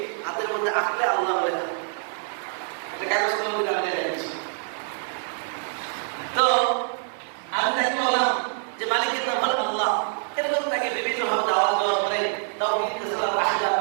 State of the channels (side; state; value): left; silent; digital silence